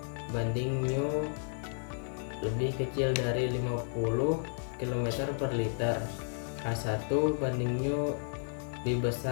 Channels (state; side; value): silent; right; digital silence